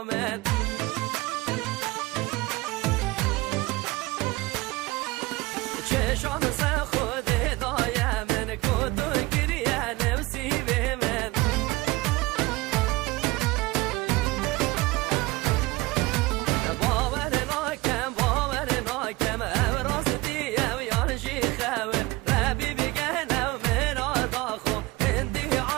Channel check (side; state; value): left; quieter; 21.5 dB